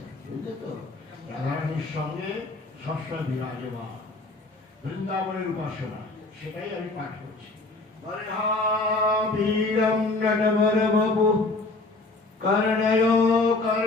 বুঝলে তো? রাধারানীর সঙ্গে সবসময় বিরাজমান, বৃন্দাবনের উপাসনা, সেটাই আমি পাঠ করছি। বরিহাপীড়ম নটবরবপু কর্ণयो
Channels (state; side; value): quieter; right; 3.2 dB